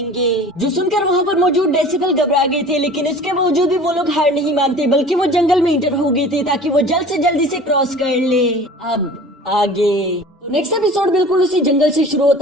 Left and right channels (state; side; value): normal; both; correlation 0.43